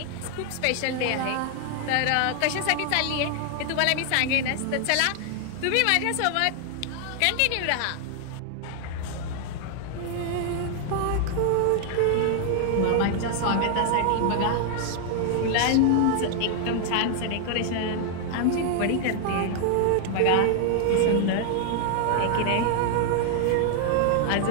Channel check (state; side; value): different; both; correlation 0.00